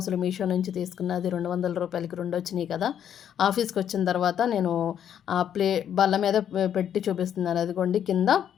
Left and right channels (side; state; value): right; quieter; 9.4 dB